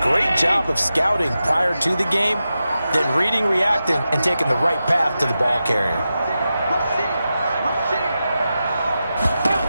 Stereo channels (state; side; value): inverted; both; correlation -0.91